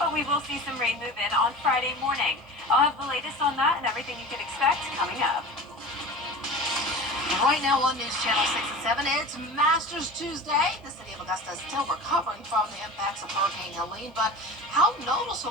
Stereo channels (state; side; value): normal; both; correlation 0.35